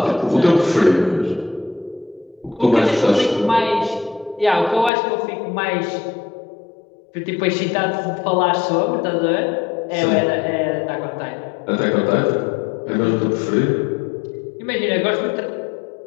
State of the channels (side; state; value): right; drops out; at 4.9 s